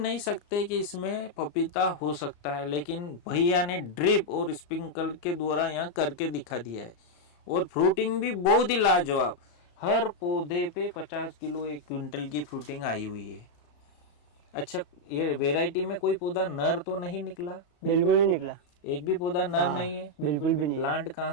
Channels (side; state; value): right; late; 34 ms